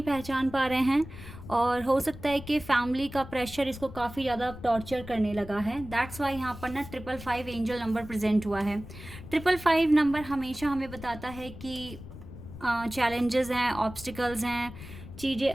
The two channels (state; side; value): noise; left; rumble, 14 dB below the sound